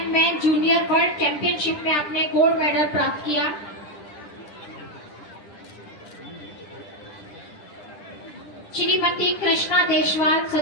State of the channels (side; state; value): right; late; 10 ms